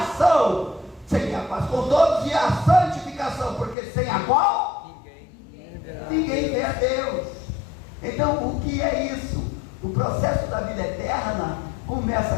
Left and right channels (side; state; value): right; drops out; at 3.8 s